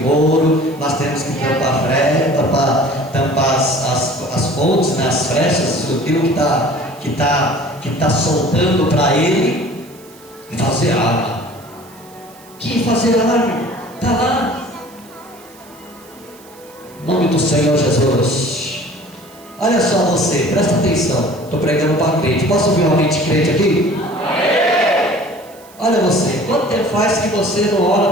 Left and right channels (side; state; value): right; noise; hiss, 25 dB below the sound